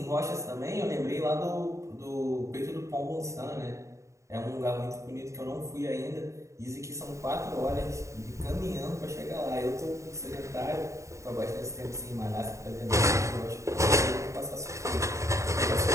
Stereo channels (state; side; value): late; left; 0.15 ms